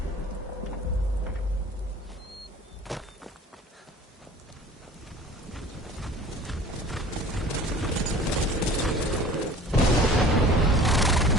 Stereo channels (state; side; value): normal; both; correlation 0.45